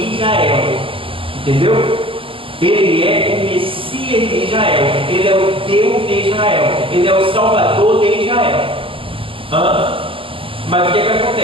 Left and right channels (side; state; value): left; late; 0.26 ms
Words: Israel. Entendeu? Ele é o Messias de Israel. Ele é o Deus de Israel. Ele é o Salvador de Israel. Mas o que é que